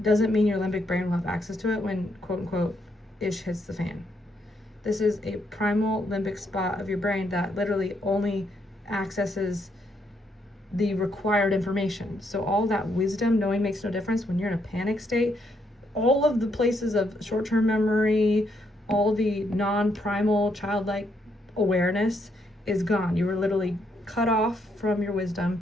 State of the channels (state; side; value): normal; both; correlation 0.75